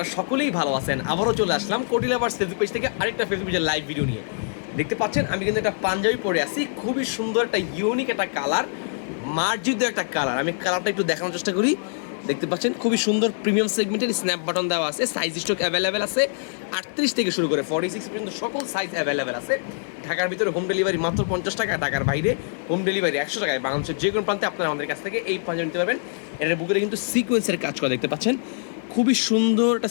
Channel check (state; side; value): silent; right; 62 dB below the other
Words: সকলেই ভালো আছেন। আবারও চলে আসলাম কোটি লাভার্স ফেসবুক পেজ থেকে আরেকটা ফেসবুক পেজের লাইভ ভিডিও নিয়ে। দেখতে পাচ্ছেন আমি কিন্তু একটা পাঞ্জাবি পরে আছি, খুবই সুন্দর একটা ইউনিক একটা কালার, মার্জিত একটা কালার। আমি কালারটা একটু দেখানোর চেষ্টা করি। দেখতে পাচ্ছেন খুবই সুন্দর প্রিমিয়াম সেগমেন্টের স্ন্যাপ বাটন দেওয়া আছে, সাইজ স্টক অ্যাভেলেবেল আছে 38 থেকে শুরু করে 46 পর্যন্ত সকল সাইজ অ্যাভেলেবেল আছে। ঢাকার ভিতরে হোম ডেলিভারি মাত্র 50 টাকা, ঢাকার বাইরে হোম ডেলিভারি 100 টাকায়। বাংলাদেশের যে কোনো প্রান্তে আপনারা আমাদের কাছ থেকে এই পাঞ্জাবি নিতে পারবেন। এটার বুকের কিন্তু সিকোয়েন্সের কাজ করা দেখতে পাচ্ছেন, খুবই সুন্দর একটা